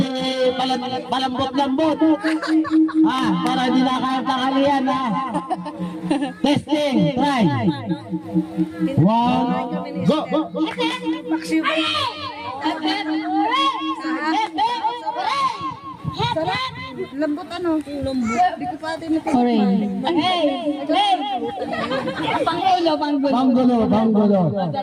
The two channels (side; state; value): both; identical; correlation 1.00